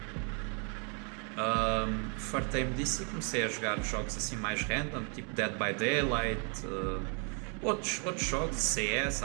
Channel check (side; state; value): left; quieter; 37.8 dB